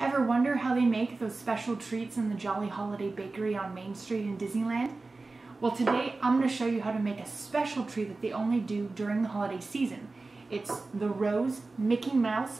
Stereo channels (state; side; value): quieter; left; 3.5 dB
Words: Ever wonder how they make those special treats in the Jolly Holiday Bakery on Main Street in Disneyland? Well, today I'm going to show you how to make a special treat that they only do during the holiday season. It's the Rose Mickey